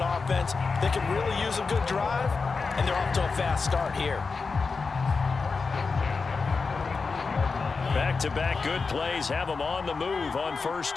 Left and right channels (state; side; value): quieter; right; 4.6 dB